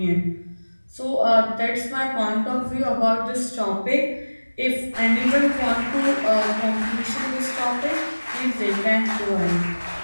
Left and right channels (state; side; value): inverted; both; correlation -1.00